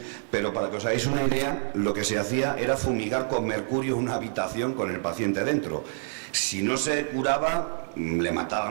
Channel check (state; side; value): silent; left; 60 dB below the other